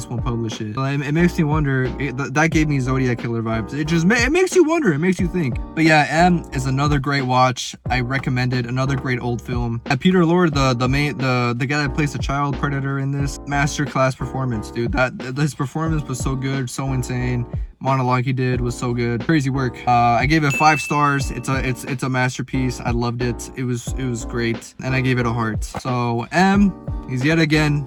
won't publish it. So it makes me wonder. That gave me Zodiac Killer vibes. It makes you wonder. It makes you think. But yeah, M is another great watch. I recommend it. Another great old film. And Peter Lorre, the guy that plays the child predator in this, masterclass performance, dude. His performance was so good, so insane. Monologue he did was so good. Crazy work. I gave it 5 stars. It's a masterpiece. I loved it. It was great, and I gave it a heart. So M is yet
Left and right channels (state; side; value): identical; both; correlation 1.00